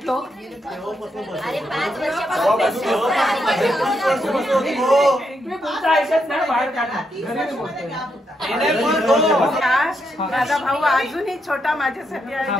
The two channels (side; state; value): both; normal; correlation 0.80